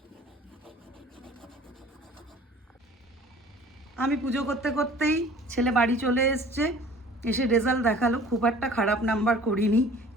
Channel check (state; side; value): normal; both; correlation 0.48